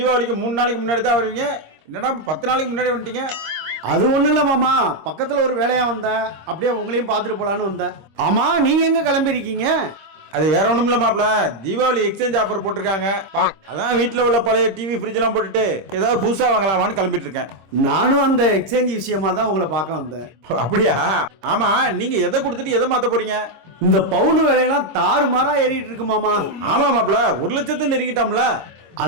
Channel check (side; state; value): left; late; 26 ms